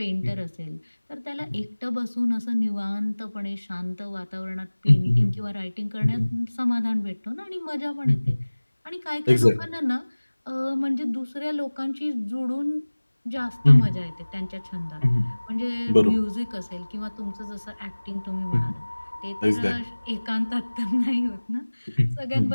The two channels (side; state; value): both; inverted; correlation -1.00